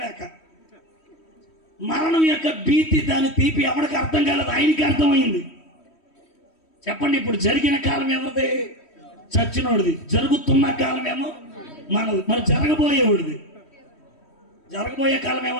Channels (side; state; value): right; late; 3.1 ms